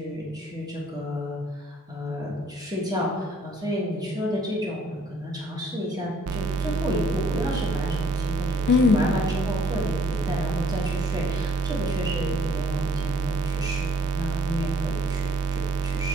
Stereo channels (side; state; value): both; normal; correlation 0.62